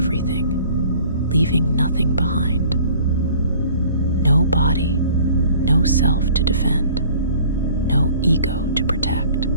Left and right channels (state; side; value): inverted; both; correlation -0.51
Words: leaving nothing behind. No body, no self to defend, no ego to protect.